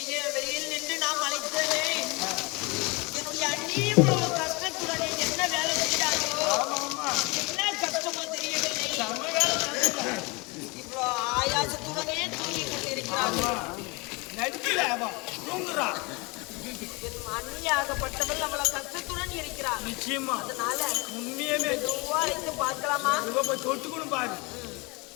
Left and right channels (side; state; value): right; quieter; 27.2 dB